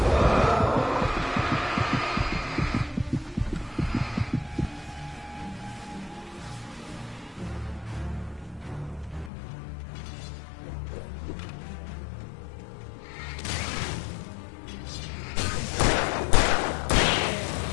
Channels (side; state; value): right; drops out; at 9.3 s